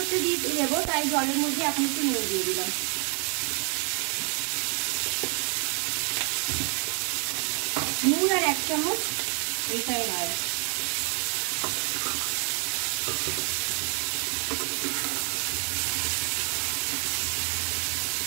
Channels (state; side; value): quieter; left; 39.4 dB